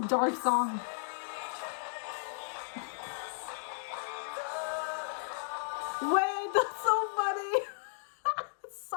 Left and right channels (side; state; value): right; silent; digital silence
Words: dark song. Wait, that's so funny.